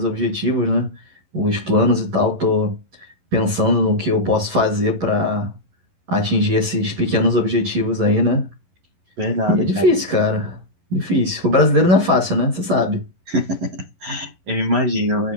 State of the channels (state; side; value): late; left; 11 ms